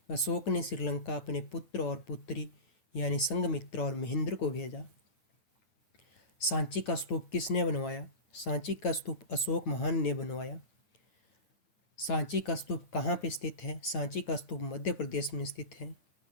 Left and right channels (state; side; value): late; right; 10 ms